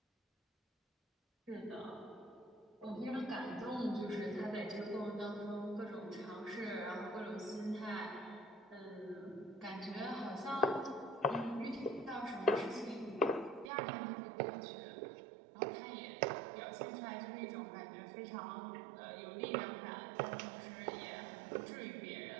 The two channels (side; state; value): left; drops out; at 13.7 s